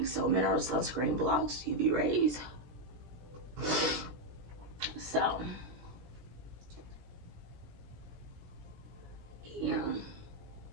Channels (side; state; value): left; late; 17 ms